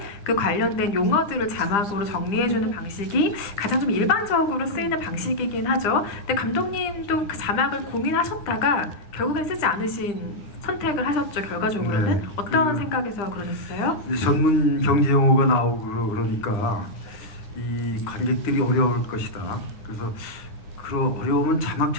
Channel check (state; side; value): late; right; 9.9 ms